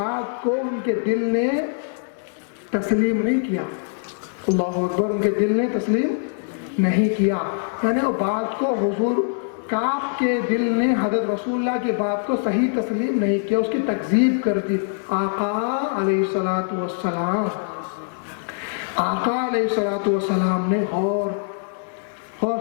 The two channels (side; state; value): right; silent; digital silence